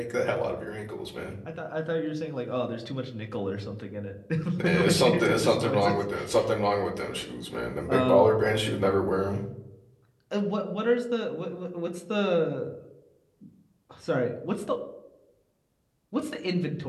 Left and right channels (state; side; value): identical; both; correlation 1.00